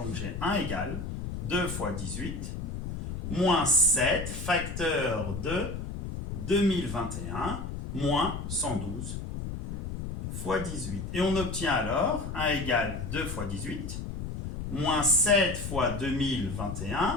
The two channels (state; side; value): noise; left; rumble, 6 dB below the sound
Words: j'ai 1 égale 2 fois 18, moins 7, facteur de 2021, moins 112 fois 18. Et on obtient alors 1 égale 2 fois 18, moins 7 fois